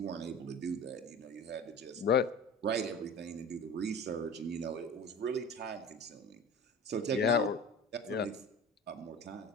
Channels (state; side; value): normal; both; correlation 0.36